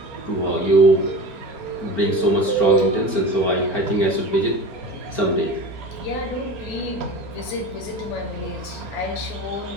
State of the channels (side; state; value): right; late; 4.4 ms